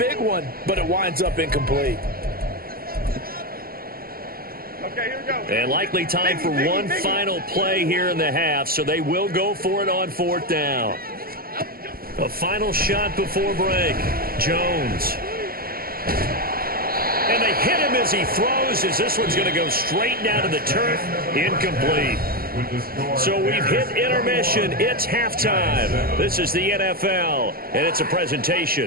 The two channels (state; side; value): late; left; 0.43 ms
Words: one, but it winds up incomplete. Okay, here we go. And likely time for one final play here in the half, so they will go for it on 4th down. A final shot before break. Jones. And they hit him as he throws, as this one's going to go straight down to the turf. Incomplete. So we've hit intermission. It's halftime. This is the NFL, and it's a